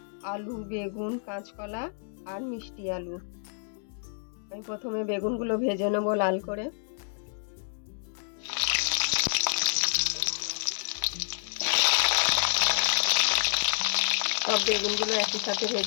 আলু, বেগুন, কাঁচকলা আর মিষ্টি আলু। আমি প্রথমে বেগুনগুলো ভেজে নেব লাল করে। সব বেগুনগুলো একই সাথে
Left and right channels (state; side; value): silent; right; digital silence